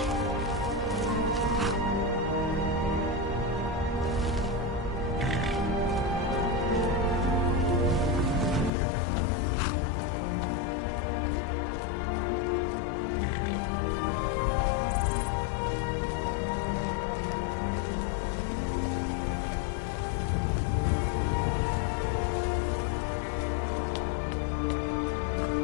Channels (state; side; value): drops out; right; at 8.7 s